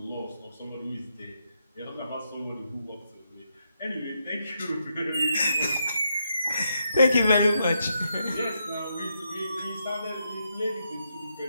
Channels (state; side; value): inverted; both; correlation -0.80